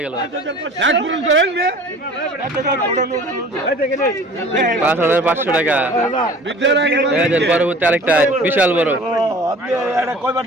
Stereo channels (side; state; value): both; normal; correlation 0.45